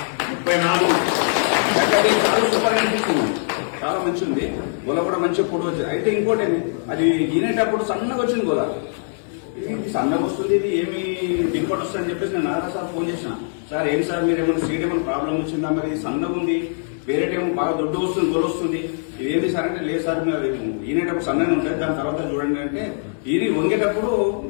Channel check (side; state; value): right; silent; 64 dB below the other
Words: 34 చాలా సూపర్ అనిపిస్తుంది. చాలా మంచి ఉంది. గొల కూడా మంచిగా పొడి వచ్చింది. అయితే ఇంకోటి అది ఈనేటప్పుడు సన్నగా వచ్చింది గొల. ఇది సన్నగా వస్తుంది, ఇది ఏమి దిగుబడి వస్తుంది అని చెప్పేసి నేను నారా సార్ ఫోన్ చేసిన. సార్ ఏం సార్ మీరు ఏమైనా సీడ్ ఏమైనా ప్రాబ్లం వచ్చిందా, మరి సన్నగా ఉంది, వేరేటేమో బాగా దొడ్డు వస్తుంది, గొల వస్తుంది, ఇదేంటి సార్ అంటే లేదు సార్ మీరు ఈనేటప్పుడు సన్నగా ఉంటుంది, దాని తర్వాత చూడండి అంటే ఇది వంగేటప్పుడు